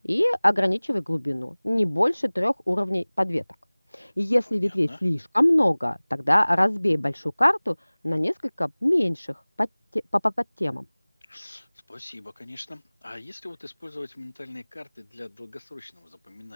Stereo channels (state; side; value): inverted; both; correlation -1.00